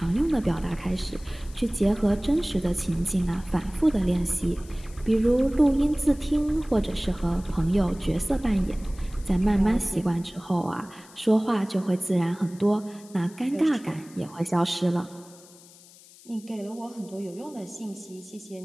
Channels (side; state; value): left; noise; hiss, 23 dB below the sound